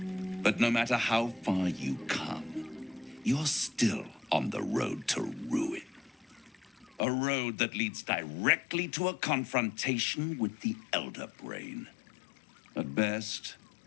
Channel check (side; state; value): right; drops out; at 7.0 s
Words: But no matter how far you come, you're still on the road to ruin. A road that leads directly to a confrontation with the Elder Brain. At best,